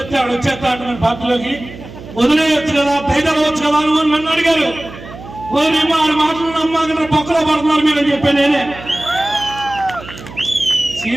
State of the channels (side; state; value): right; noise; hum, 15 dB below the sound